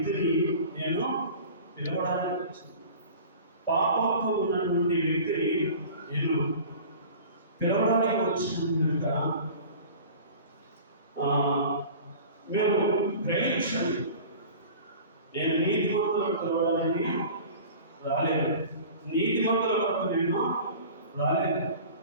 నేను పిలవడానికి వచ్చింది. పాపంతో ఉన్నటువంటి వ్యక్తిని నేను పిలవడానికి వచ్చింది కనుక మేము గ్రహించండి. నేను నీతిమంతులను పిలవడానికి రాలేదు, నీతిమంతుల వరకు నేను రాలేదు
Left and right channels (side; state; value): both; inverted; correlation -0.41